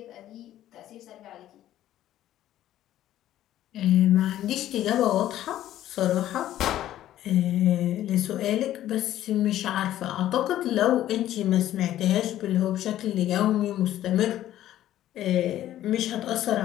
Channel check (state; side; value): quieter; right; 12.9 dB